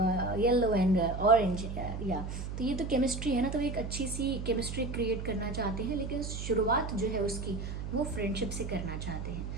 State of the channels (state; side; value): noise; right; hum, 6 dB below the sound